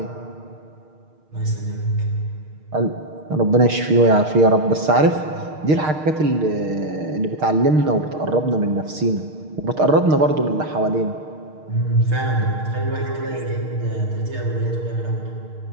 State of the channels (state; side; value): late; left; 6.5 ms